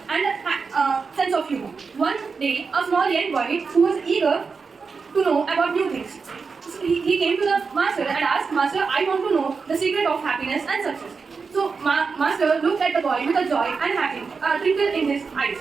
and sense of humor. One day, a small young boy who was eager to know about new things. He came to the master and asked, Master, I want to know the secret of happiness and success. So, Master looked at the boy with a joy and a twinkle in his eyes.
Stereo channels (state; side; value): quieter; left; 5.0 dB